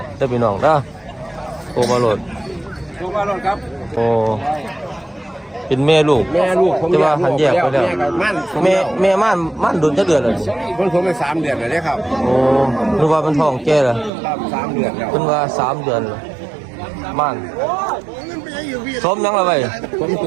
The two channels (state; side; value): drops out; left; at 14.1 s